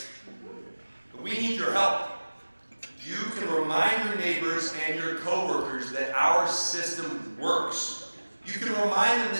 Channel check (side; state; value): both; inverted; correlation -1.00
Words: But we need your help. You can remind your neighbors and your coworkers that our system works. You can remind them